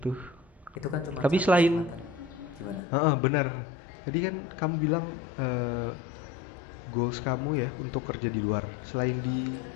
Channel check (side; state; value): right; drops out; at 2.8 s